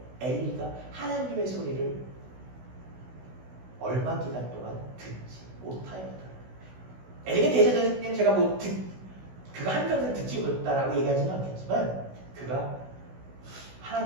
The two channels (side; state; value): left; late; 16 ms